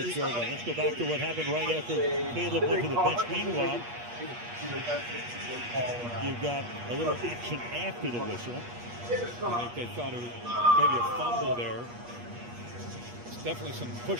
line. Let's go back to what happened right after Caleb went to the bench. Meanwhile, you've got a little action after the whistle. I think they thought it was maybe a fumble there. It's definitely some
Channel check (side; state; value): left; late; 8.4 ms